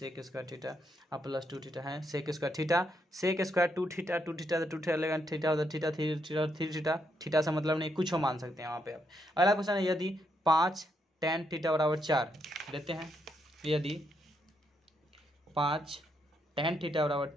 स्क्वायर थीटा अब प्लस 2 थीटा है, सेक स्क्वायर 2 थीटा 2 थीटा लेगा, थीटा होता थीटा 3 थीटा, थीटा से मतलब नहीं, कुछ हो मान सकते हैं वहाँ पे आप। अगला क्वेश्चन है यदि 5 tan थीटा बराबर 4 देते हैं, यदि 5 tan थीटा बराबर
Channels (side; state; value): both; normal; correlation 0.78